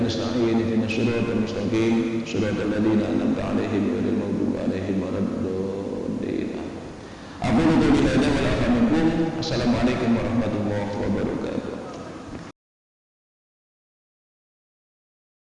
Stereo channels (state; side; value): identical; both; correlation 1.00